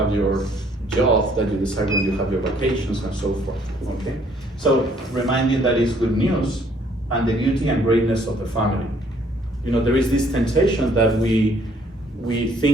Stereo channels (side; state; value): both; normal; correlation 0.63